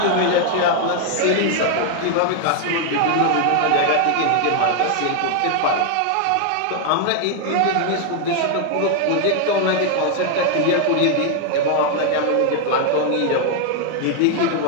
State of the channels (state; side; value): different; both; correlation 0.00